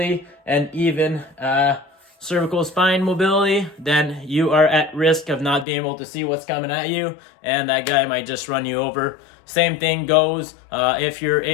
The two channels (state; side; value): drops out; right; at 5.7 s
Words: and even cervical spine mobility, then you are at risk of not being able to see what's coming at you, and that guy might just run you over. Same thing goes if you're